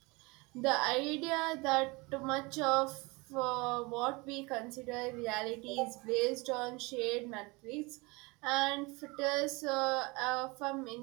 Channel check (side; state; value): left; quieter; 25.9 dB